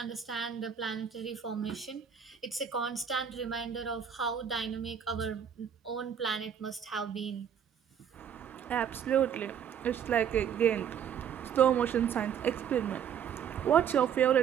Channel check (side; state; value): left; quieter; 8.2 dB